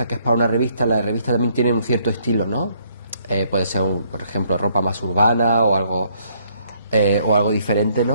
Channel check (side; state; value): both; inverted; correlation -0.67